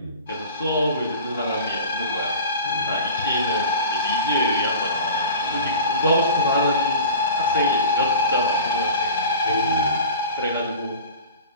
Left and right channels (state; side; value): inverted; both; correlation -0.37